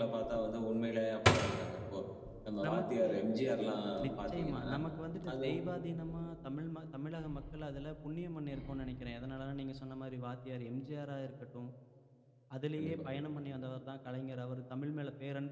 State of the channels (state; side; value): identical; both; correlation 1.00